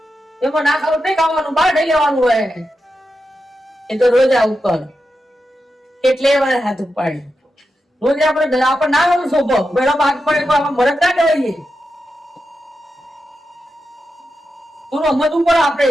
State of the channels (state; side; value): normal; both; correlation 0.89